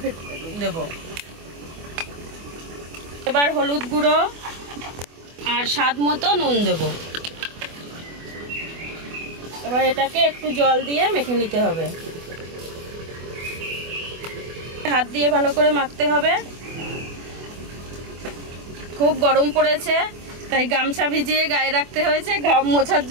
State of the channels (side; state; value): left; late; 24 ms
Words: দেব। এবার হলুদ গুঁড়ো আর স্বাদ মতো নুন দেব। এবার এটাকে একটু জল দিয়ে মেখে নিতে হবে। হাত দিয়ে ভালো করে মাখতে হবে। খুব গরম পড়েছে, তাই গামছা ভিজিয়ে গায়ে রাখতে হয়েছে ঘাম মোছার